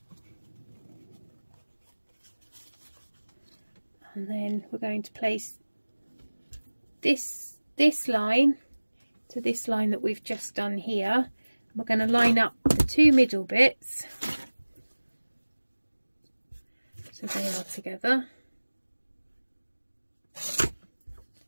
and then we're going to place this line to this line that we've just done here. We're going to line up the two middle bits so they are together.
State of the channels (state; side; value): inverted; both; correlation -1.00